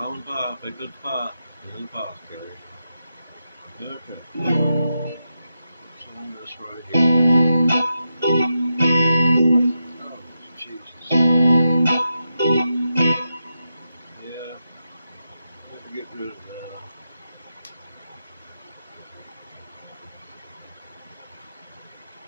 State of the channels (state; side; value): inverted; both; correlation -0.88